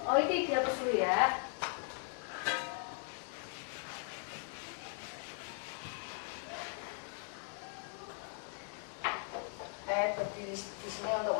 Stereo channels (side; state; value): right; silent; 52 dB below the other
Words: Oh, itu dihapus dulu ya. di sini untuk